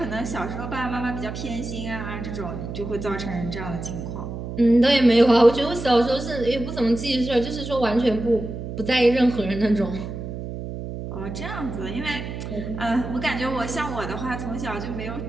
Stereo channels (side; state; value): right; noise; hum, 7 dB below the sound